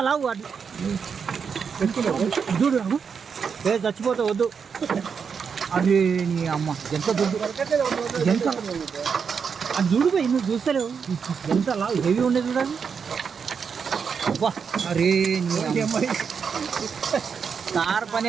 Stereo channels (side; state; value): left; quieter; 6.3 dB